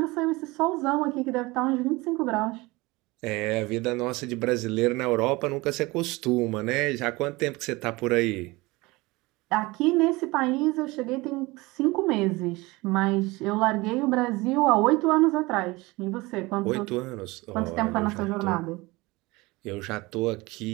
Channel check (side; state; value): left; quieter; 22.5 dB